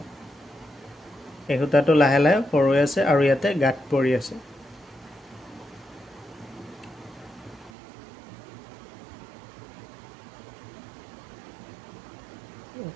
এই হুতাটো লাহে লাহে সৰু আছে আৰু ইয়াতে গাঁত পৰি আছে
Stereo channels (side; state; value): left; drops out; at 7.7 s